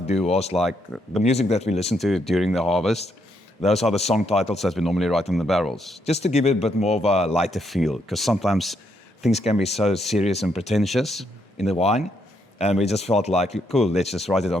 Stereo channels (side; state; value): both; normal; correlation 0.76